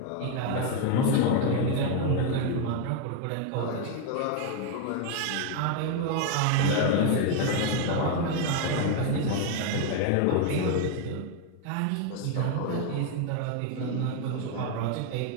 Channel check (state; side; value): different; both; correlation 0.01